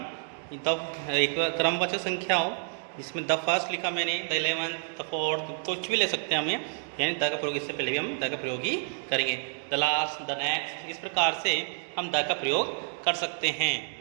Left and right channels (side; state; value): left; silent; 59 dB below the other